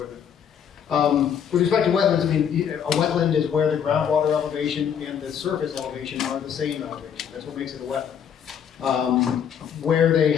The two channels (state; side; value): quieter; right; 8.2 dB